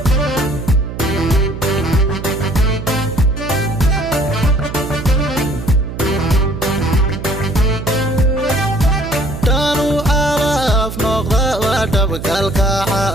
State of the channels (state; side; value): noise; right; hum, 9 dB below the sound